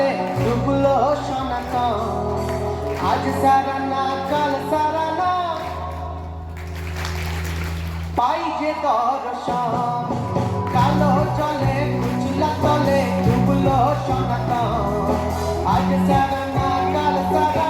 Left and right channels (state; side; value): identical; both; correlation 1.00